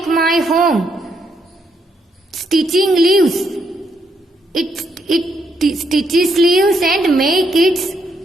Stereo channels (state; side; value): normal; both; correlation 0.76